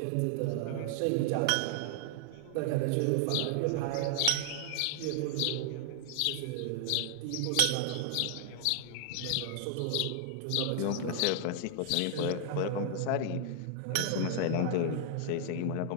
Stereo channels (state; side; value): different; both; correlation 0.00